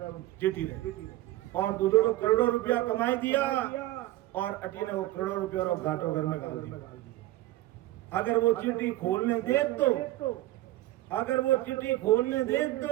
चिट्ठी ने और दूसरों करोड़ों रुपया कमाई दिया और अटी ने वो करोड़ों रुपया और घाटो घर में डाल दिया। अगर वो चिट्ठी खोलने दे तो, अगर वो चिट्ठी खोलने दे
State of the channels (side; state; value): left; quieter; 16.5 dB